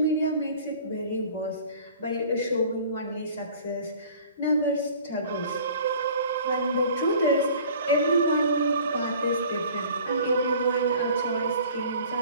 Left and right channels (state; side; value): inverted; both; correlation -0.47